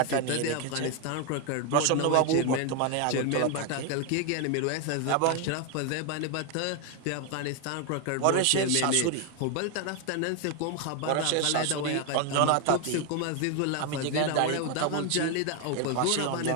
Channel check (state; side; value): different; both; correlation 0.01